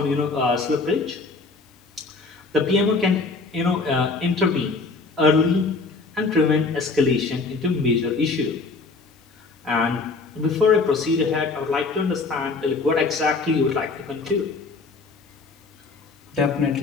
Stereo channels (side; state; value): right; quieter; 3.9 dB